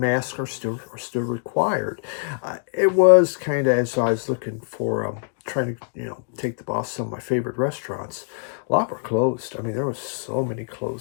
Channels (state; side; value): silent; right; digital silence